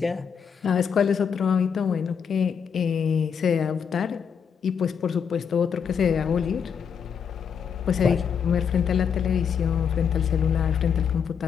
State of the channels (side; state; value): right; quieter; 7.1 dB